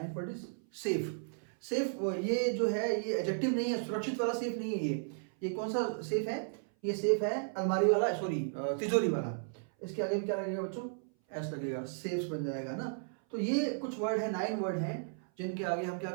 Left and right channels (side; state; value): left; silent; 55 dB below the other